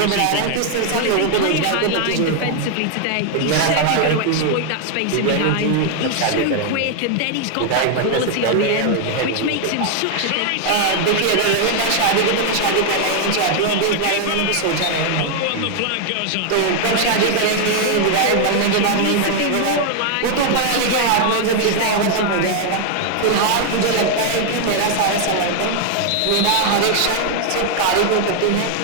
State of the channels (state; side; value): different; both; correlation 0.00